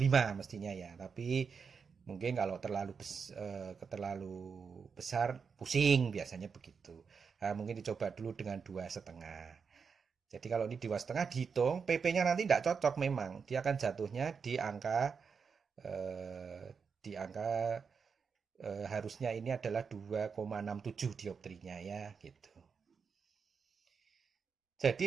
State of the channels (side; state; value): left; quieter; 5.8 dB